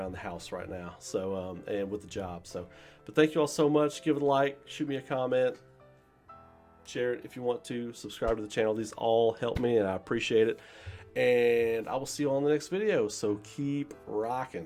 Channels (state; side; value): identical; both; correlation 1.00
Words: the house right now. So and with the job. So, but thank you all so much. Give it a like. Shoot me a comment. Share it if you want to. Subscribe to the channel. These all help me, and I appreciate it. And I will see you all in the next video. So keep